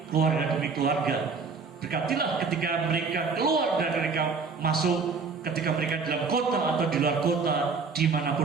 keluarga demi keluarga. Berkatilah ketika mereka keluar dan mereka masuk, ketika mereka dalam kota atau di luar kota,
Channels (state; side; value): quieter; left; 4.9 dB